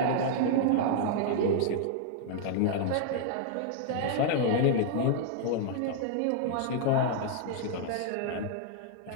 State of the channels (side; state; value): both; different; correlation -0.01